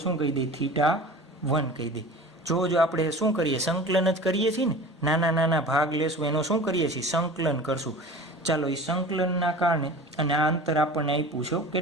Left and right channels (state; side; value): normal; both; correlation 0.38